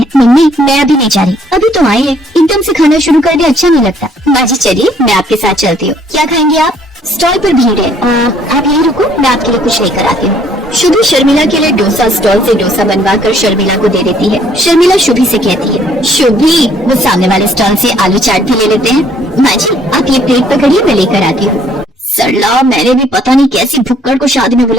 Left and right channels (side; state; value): both; normal; correlation 0.63